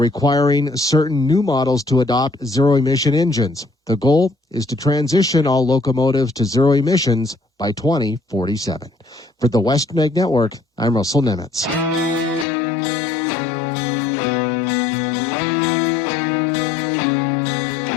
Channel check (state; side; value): drops out; right; at 12.5 s